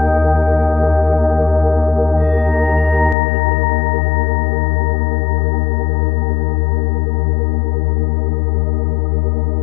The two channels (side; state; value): right; drops out; at 3.2 s